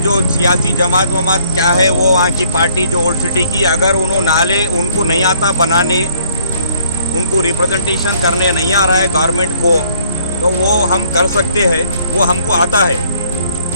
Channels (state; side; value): inverted; both; correlation -0.63